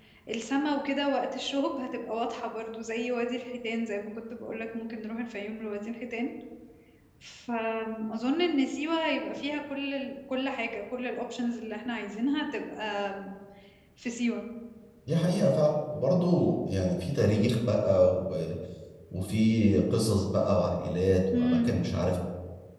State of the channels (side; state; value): both; identical; correlation 1.00